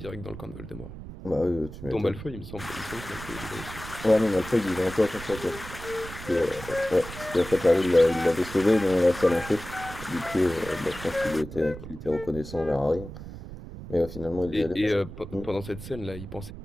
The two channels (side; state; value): right; noise; rumble, 12 dB below the sound